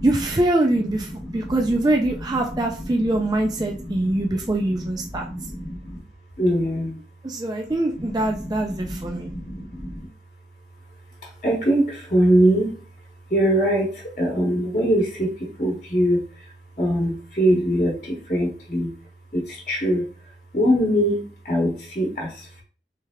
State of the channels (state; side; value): normal; both; correlation 0.77